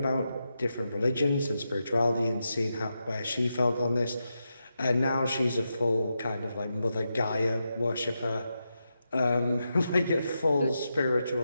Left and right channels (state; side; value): inverted; both; correlation -0.87